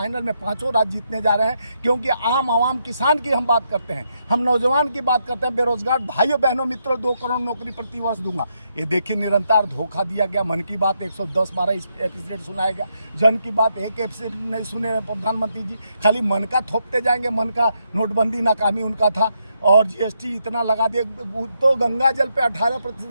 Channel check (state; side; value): inverted; both; correlation -0.79